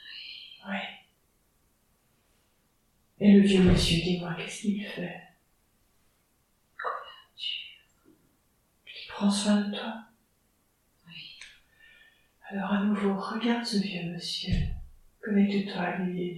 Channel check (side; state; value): both; identical; correlation 1.00